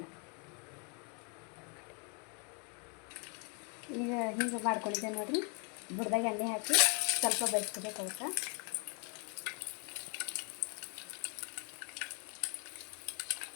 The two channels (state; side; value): quieter; right; 36.1 dB